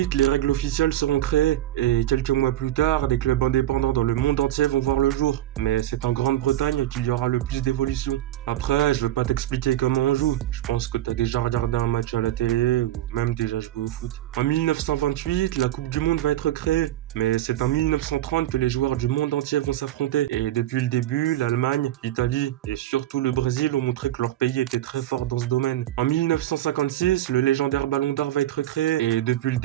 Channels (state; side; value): quieter; left; 13.5 dB